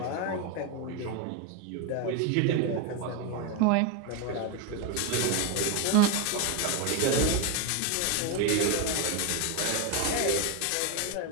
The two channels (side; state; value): both; different; correlation 0.02